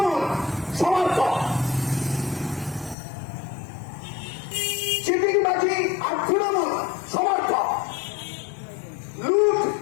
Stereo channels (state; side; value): drops out; right; at 3.0 s